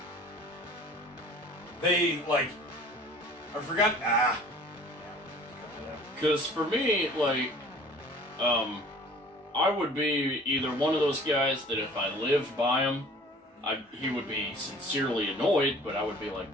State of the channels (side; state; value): both; normal; correlation 0.48